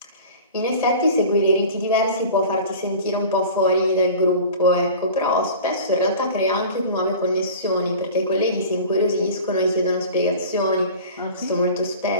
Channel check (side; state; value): both; inverted; correlation -0.39